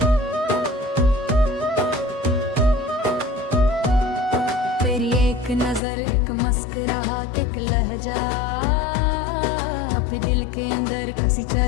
तेरी एक नजर, एक मुस्कुराहट, एक लहजा अपने दिल के अंदर किसी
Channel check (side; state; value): right; drops out; at 5.8 s